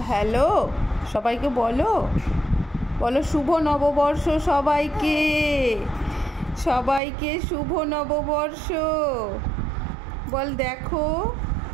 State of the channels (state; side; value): drops out; left; at 7.0 s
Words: হ্যালো, সবাইকে বলো, বলো শুভ নববর্ষ সবাইকে, সবাইকে শুভ নববর্ষ। বল দেখো